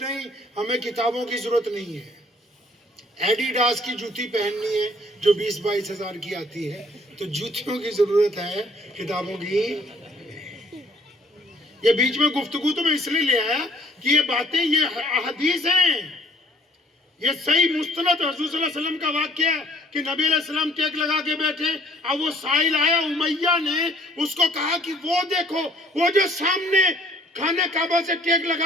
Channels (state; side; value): normal; both; correlation 0.59